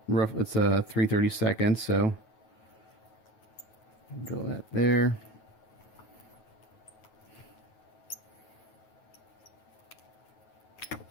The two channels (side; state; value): right; late; 9.2 ms